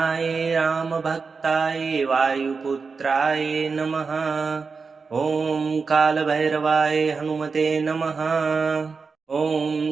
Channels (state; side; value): quieter; left; 4.8 dB